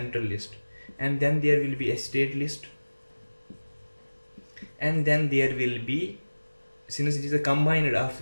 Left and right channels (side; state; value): both; inverted; correlation -1.00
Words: list, and then there will be a state list, and then there will be, since it is a combined of